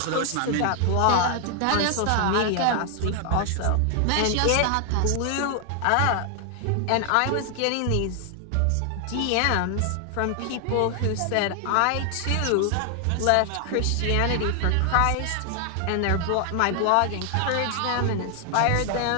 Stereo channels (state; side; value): different; both; correlation 0.00